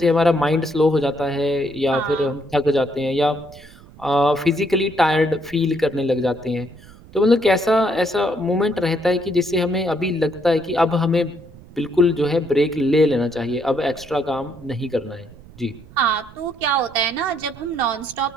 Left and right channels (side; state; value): right; noise; rumble, 21 dB below the sound